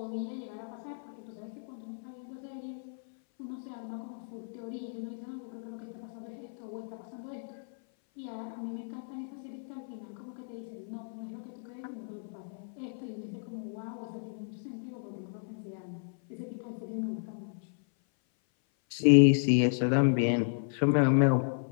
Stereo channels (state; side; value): silent; right; 56 dB below the other